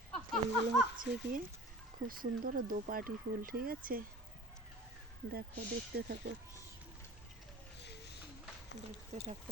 এইগুলো হচ্ছে কি খুব সুন্দর দোপাটি ফুল, ঠিক আছে? দেখো, দেখতে থাকো, দেখতে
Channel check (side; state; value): both; normal; correlation 0.41